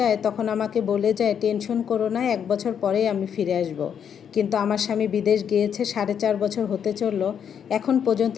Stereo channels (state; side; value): quieter; right; 8.1 dB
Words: তখন আমাকে বলে যায়, টেনশন করো না, 1 বছর পরেই আমি ফিরে আসব। কিন্তু আমার স্বামী বিদেশ গিয়েছে 4.5 বছর হতে চলল, এখন পর্যন্ত